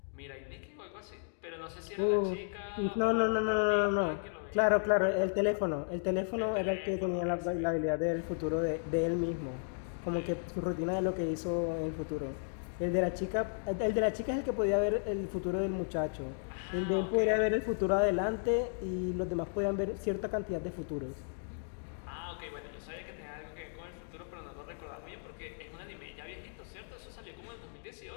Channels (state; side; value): silent; right; digital silence